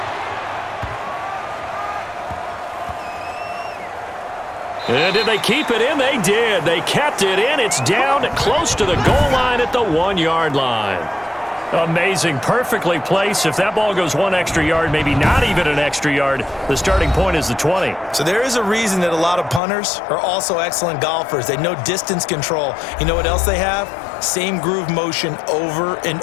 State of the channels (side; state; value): right; drops out; at 19.6 s